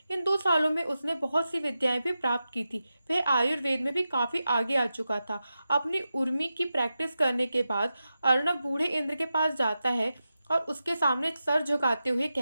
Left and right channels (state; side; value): inverted; both; correlation -0.91